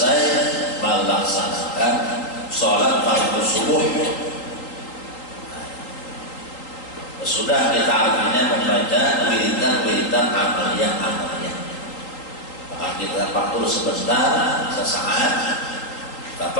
melaksanakan sholat fardu subuh. Sudah kita artinya membaca wiridan amaliyah. Maka kita tafakur sebentar, sesaat.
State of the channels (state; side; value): late; right; 3.8 ms